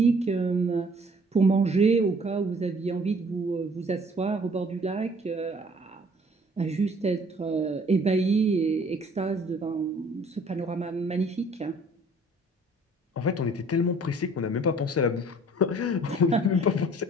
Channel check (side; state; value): both; normal; correlation 0.56